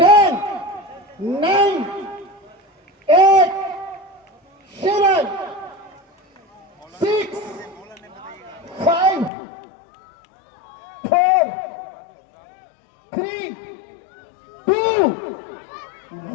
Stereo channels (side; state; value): right; drops out; at 9.3 s